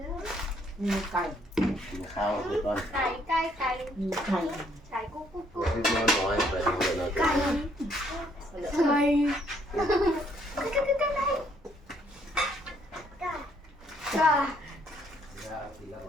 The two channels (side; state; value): both; normal; correlation 0.68